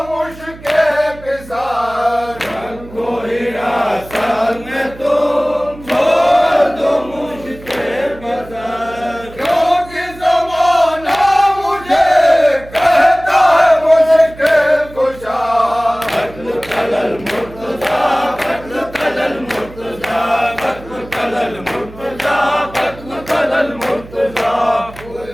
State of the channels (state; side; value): noise; right; hum, 18 dB below the sound